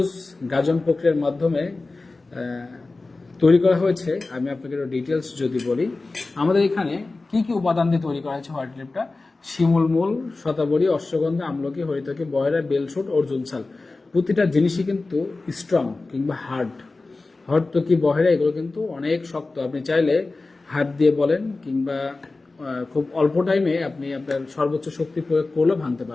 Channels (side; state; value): right; quieter; 3.4 dB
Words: গাজন প্রক্রিয়ার মাধ্যমে তৈরি করা হয়েছে, আমি আপনাকে ডিটেলস যদি বলি, আমাদের এখানে কি কি উপাদান দিয়ে তৈরি করা হয়েছে হোয়াইট রিলিফটা: শিমুল মূল, শতাবরী, অশ্বগন্ধা, আমলকি, হরিতকি, বয়রা, বেলশুট, অর্জুন ছাল। প্রতিটা জিনিসই কিন্তু স্ট্রং কিংবা হার্ড। হরতকি, বহেরা এগুলো কিন্তু অনেক শক্ত। আপনি চাইলে হাত দিয়ে বলেন কিংবা খুব অল্প টাইমে আপনি আপনার সর্বোচ্চ শক্তি প্রয়োগ করলেও ভাঙতে